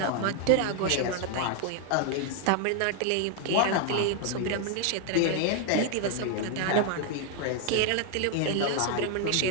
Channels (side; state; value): both; different; correlation 0.00